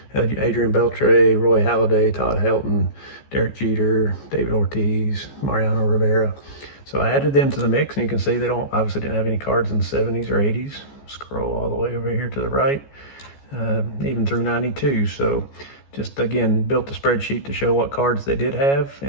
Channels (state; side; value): late; right; 14 ms